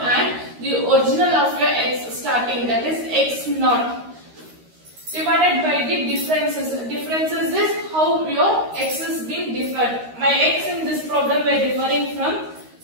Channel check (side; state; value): left; late; 13 ms